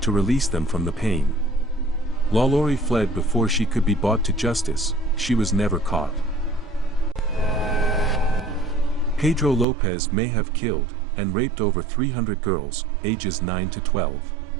to release them from the pain. LaLaurie fled before she could be brought to justice. She was never caught. Pedro Lopez may have killed and raped over 300 girls, ages 9 to 12.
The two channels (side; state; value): left; drops out; at 9.7 s